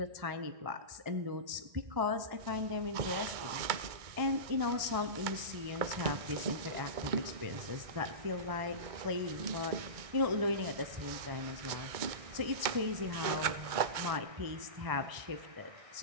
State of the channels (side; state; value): left; late; 1.6 ms